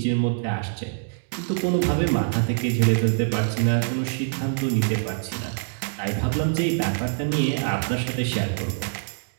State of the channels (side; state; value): left; silent; digital silence